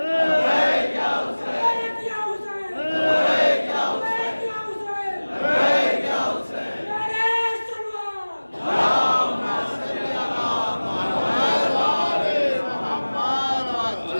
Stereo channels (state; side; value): inverted; both; correlation -1.00